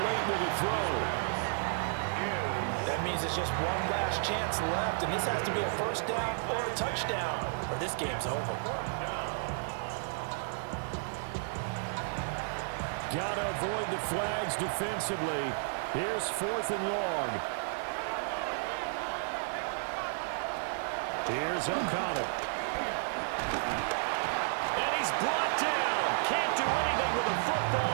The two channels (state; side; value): silent; left; digital silence